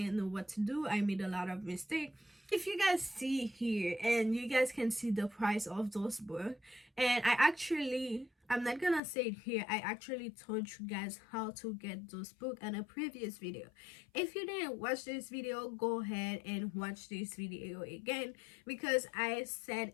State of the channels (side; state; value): right; drops out; at 9.0 s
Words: know what to do. I made a lot of mistakes. If you guys see here, and you guys can see the price of those books, and I'm not gonna say it here, I actually told you guys how to get those books in a previous video. If you didn't watch this video, go ahead and watch this video again, because I